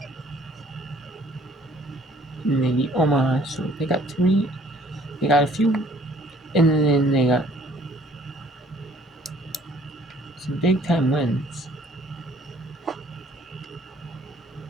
And they beat Omaha, so they got 3. They got a few. And then they got some big time wins.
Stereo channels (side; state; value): both; normal; correlation 0.57